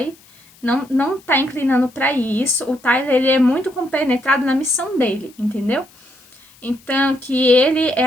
não tá inclinando pra isso. O Tyler, ele é muito compenetrado na missão dele, entendeu? Então, que ele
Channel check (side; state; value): left; noise; hiss, 27 dB below the sound